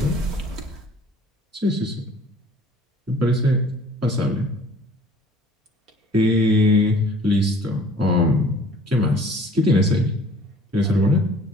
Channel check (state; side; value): normal; both; correlation 0.51